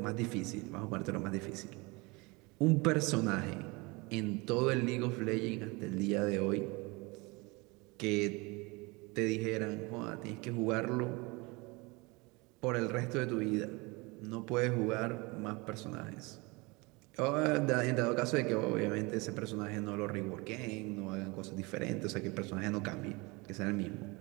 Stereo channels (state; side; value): quieter; left; 25.8 dB